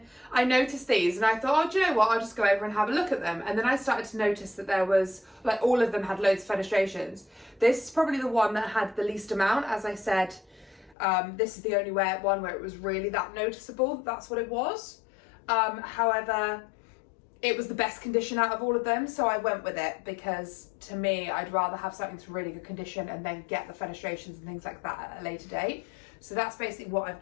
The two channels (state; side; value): drops out; right; at 11.0 s